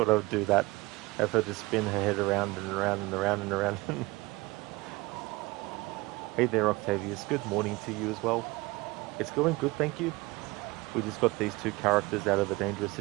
I would do that. Have her just spin her head around and around and around and around. Hey there, Octavius. Good morning to you as well. It's going good, thank you. We just got these two characters out of a dangerous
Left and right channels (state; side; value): quieter; left; 22.5 dB